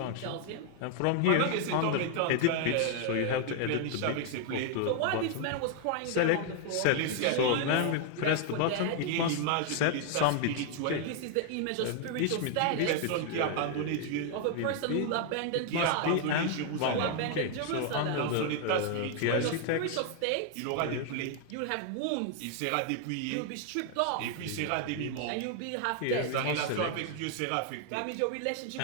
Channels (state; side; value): different; both; correlation 0.00